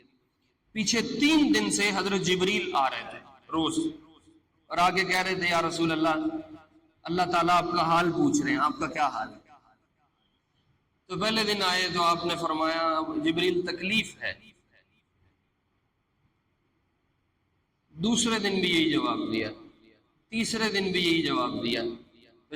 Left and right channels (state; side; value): identical; both; correlation 1.00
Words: پیچھے 3 دن سے حضرت جبریل آ رہے تھے روز، اور آگے کہہ رہے تھے یا رسول اللہ، اللہ تعالیٰ آپ کا حال پوچھ رہے ہیں، آپ کا کیا حال ہے؟ تو پہلے دن آئے تو آپ نے فرمایا جبریل تکلیف ہے، دوسرے دن بھی یہی جواب دیا، تیسرے دن بھی یہی جواب دیا۔ تو